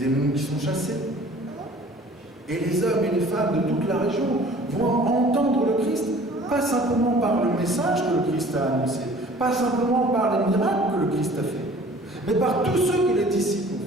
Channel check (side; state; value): both; normal; correlation 0.49